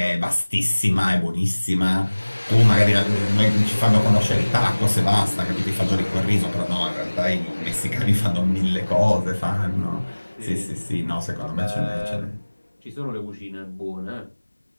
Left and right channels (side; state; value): both; inverted; correlation -1.00